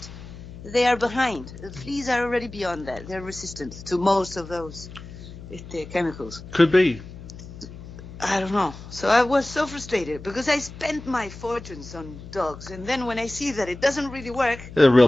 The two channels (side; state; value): left; noise; hum, 14 dB below the sound